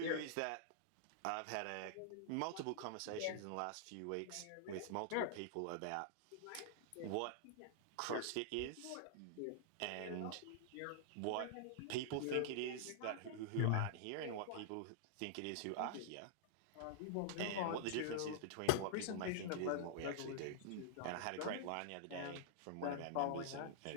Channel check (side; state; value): both; different; correlation -0.01